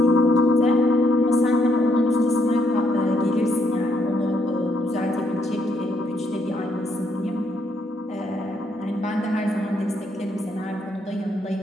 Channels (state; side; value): normal; both; correlation 0.74